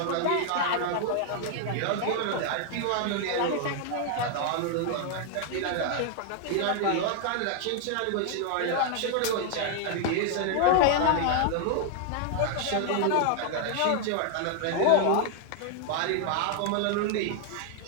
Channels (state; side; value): different; both; correlation 0.00